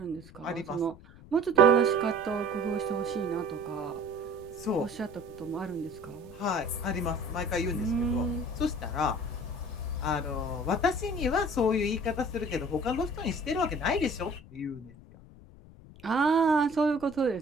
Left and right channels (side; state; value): left; noise; rumble, 20 dB below the sound